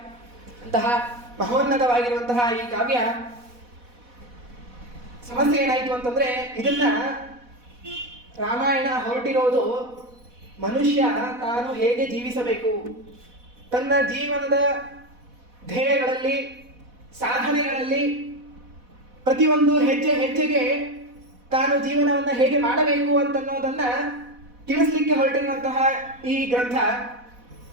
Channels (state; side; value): late; left; 4.1 ms